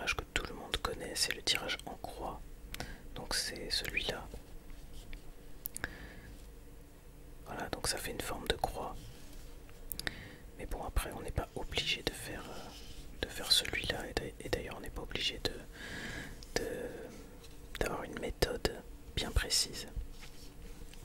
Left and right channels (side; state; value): both; identical; correlation 1.00